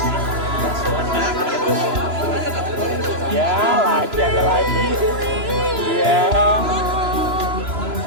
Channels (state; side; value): late; left; 3.0 ms